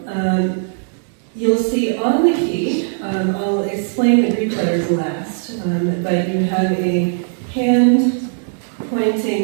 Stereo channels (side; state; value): left; silent; digital silence